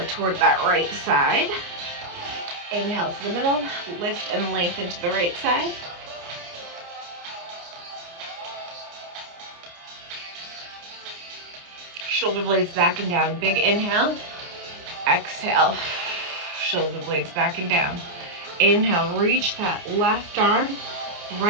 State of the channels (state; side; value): late; left; 29 ms